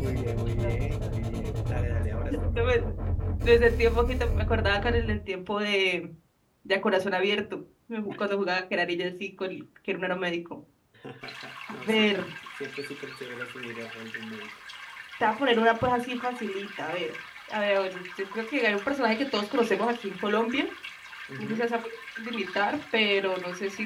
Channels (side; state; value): both; identical; correlation 1.00